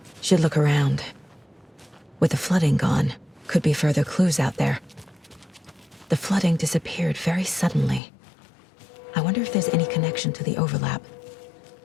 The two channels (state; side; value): drops out; right; at 8.0 s